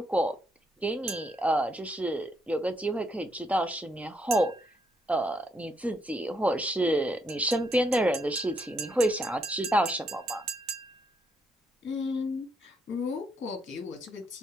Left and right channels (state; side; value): normal; both; correlation 0.75